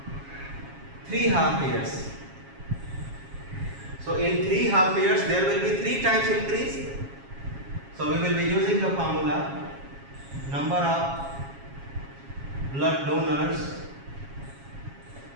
3 half years. So in 3 half years there will be 3 times increase. So we will be using the formula number of blood donors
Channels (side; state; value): left; late; 7.3 ms